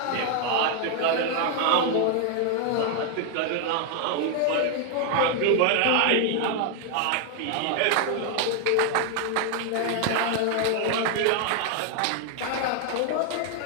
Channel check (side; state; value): both; different; correlation 0.00